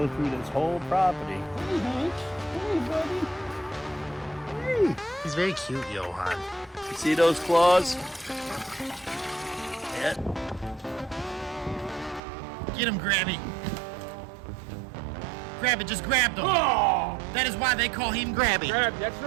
through this whole property. Hey, Hank. Hey, buddy. Hey. He's very cute, Johan. You see those claws? Yeah. Get him, Grabby. Grab it, just grab them. Oh! That is why they call him Grabby. Grab, that's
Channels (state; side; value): drops out; left; at 12.2 s